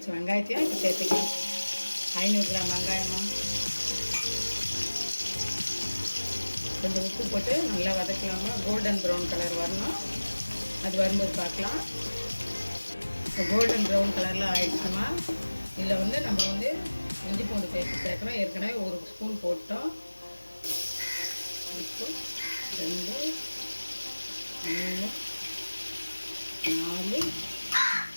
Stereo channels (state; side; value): inverted; both; correlation -1.00